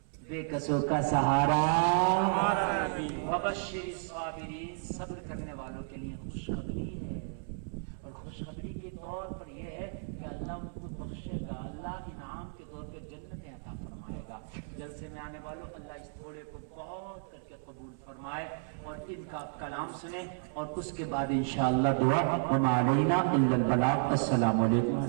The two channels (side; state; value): left; silent; 56 dB below the other